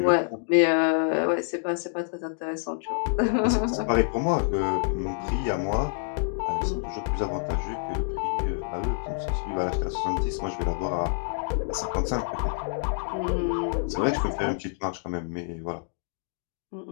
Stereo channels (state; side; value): silent; right; digital silence